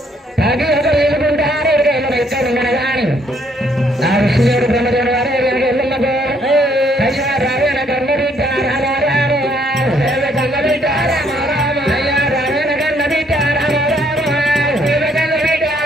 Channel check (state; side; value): normal; both; correlation 0.67